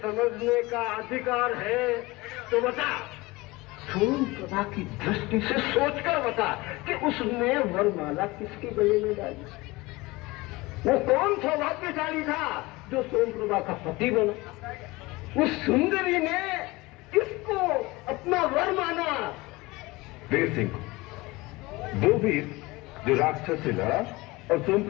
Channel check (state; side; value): quieter; right; 21.9 dB